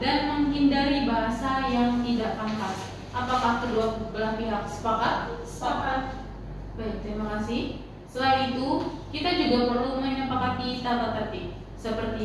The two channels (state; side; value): identical; both; correlation 1.00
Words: dan menghindari bahasa yang tidak pantas. Apakah kedua belah pihak sepakat? Sepakat. Baik, terima kasih. Selain itu, kita juga perlu menyepakati tata tertib,